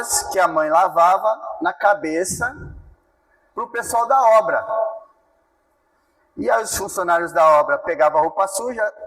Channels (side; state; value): both; identical; correlation 1.00